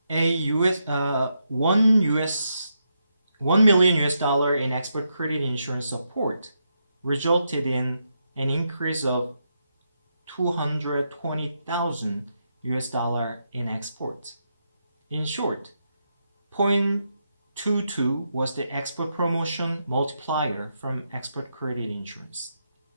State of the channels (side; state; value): both; inverted; correlation -0.82